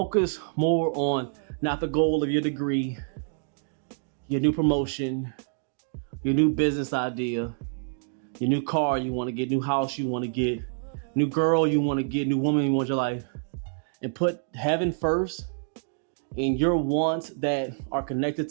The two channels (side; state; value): left; silent; digital silence